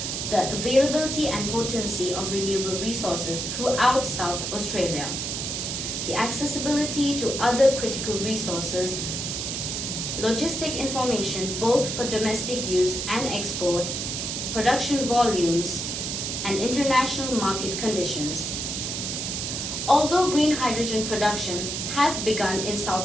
the availability and potency of renewable resources throughout South Australia, the accessibility to other critical resources, logistic information both for domestic use and export, production volumes, and international market conditions. Although green hydrogen production has begun in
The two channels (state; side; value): noise; right; hiss, 3 dB below the sound